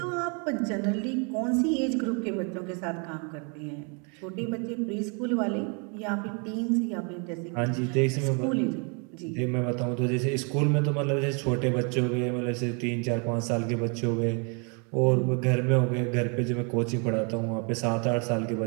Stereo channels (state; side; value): quieter; left; 36.0 dB